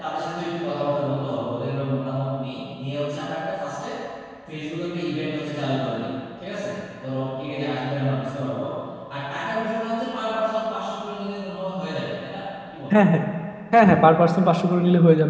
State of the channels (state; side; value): identical; both; correlation 1.00